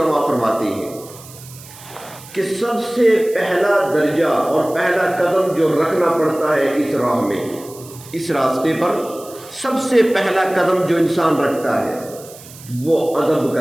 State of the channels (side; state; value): right; noise; hiss, 19 dB below the sound